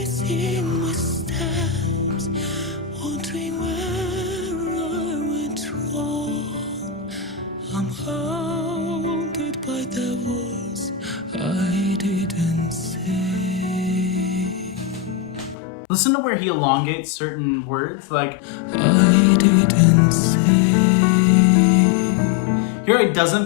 my steps, wondering where I went wrong. I'm haunted by the words I didn't say. Listen to where he elongates certain words, like I didn't say. Here it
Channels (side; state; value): right; drops out; at 15.6 s